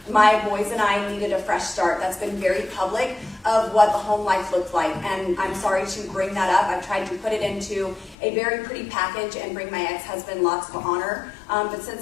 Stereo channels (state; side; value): drops out; right; at 8.2 s